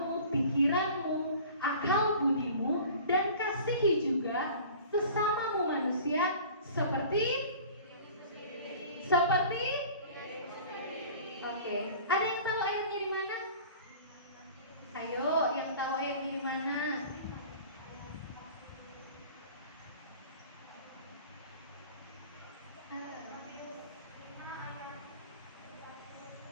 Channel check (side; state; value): both; inverted; correlation -0.43